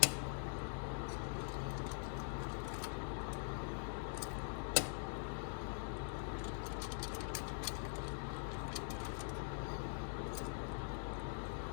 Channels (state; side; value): silent; right; digital silence